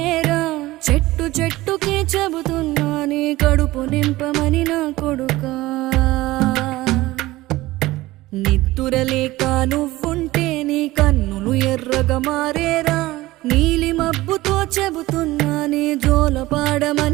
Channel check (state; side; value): quieter; left; 18.2 dB